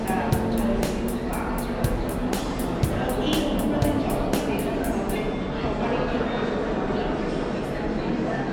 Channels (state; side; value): identical; both; correlation 1.00